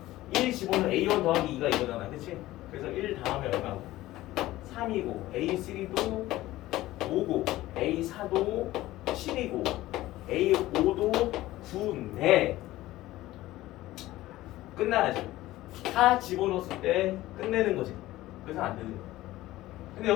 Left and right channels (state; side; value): quieter; right; 16.5 dB